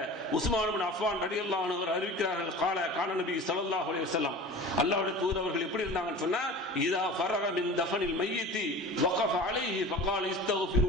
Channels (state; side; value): normal; both; correlation 0.37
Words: உஸ்மான் இப்னு அஃபான் ரலியல்லாஹு அன்ஹு அறிவிக்கிறார்கள், கான நபி ஸல்லல்லாஹு அலைஹி வஸல்லம், அல்லாஹ்வுடைய தூதர் அவர்கள் எப்படி இருந்தாங்கன்னு சொன்னா, இதா ஃபரக மின் தஃபனில் மய்யித்தி வகஃப அலைஹி ஃபகால